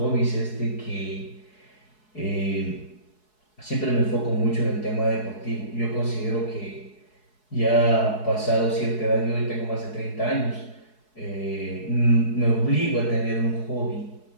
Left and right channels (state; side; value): late; right; 4.7 ms